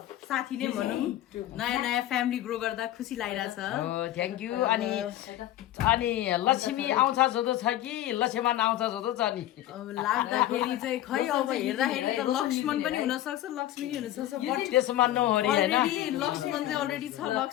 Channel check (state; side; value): quieter; right; 13.6 dB